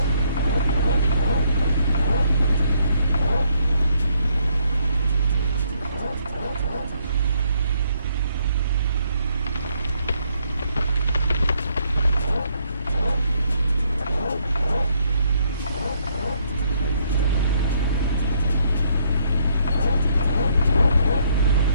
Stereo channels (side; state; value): both; inverted; correlation -0.70